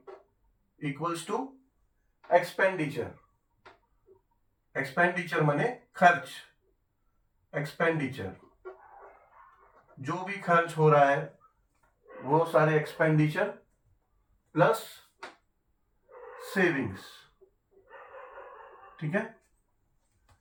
equals to expenditure. Expenditure माने खर्च। एक्सपेंडिचर, जो भी खर्च हो रहा है वो सारे एक्सपेंडिचर प्लस सेविंग्स, ठीक है।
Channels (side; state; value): both; identical; correlation 1.00